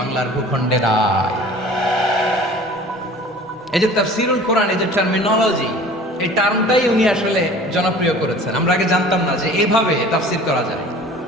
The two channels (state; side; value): normal; both; correlation 0.45